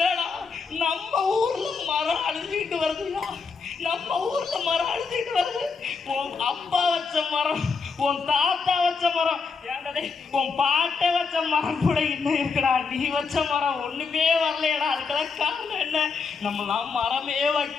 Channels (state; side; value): quieter; right; 5.0 dB